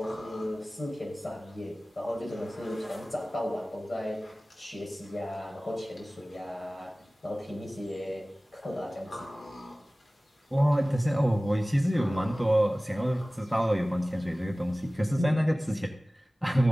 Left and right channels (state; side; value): normal; both; correlation 0.98